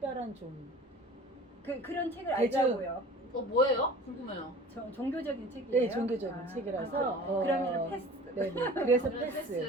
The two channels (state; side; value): normal; both; correlation 0.42